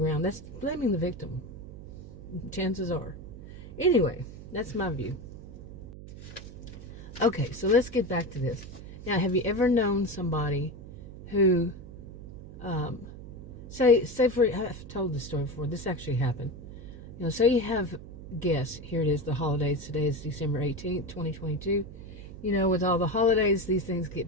That's blaming the victim. Chances are. Anyway, that's my view. Okay, so let's get back to this. Now, have you ever known somebody who, say for, I've told this story before, this actually happened. You know, say you have guests, here it is, the holidays, today is December 18th, 2022. You know, with all the holidays, these things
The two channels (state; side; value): noise; right; hum, 13 dB below the sound